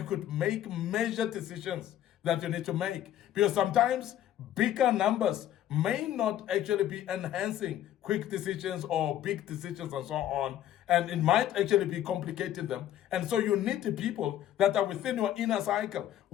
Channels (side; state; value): right; quieter; 11.9 dB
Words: could make major decisions that you need to make. Because sometimes bigger numbers may not actually be enhancing quick decisions or big decisions and so on. And it might actually be complicating them. And so you need the people that are within your inner cycle,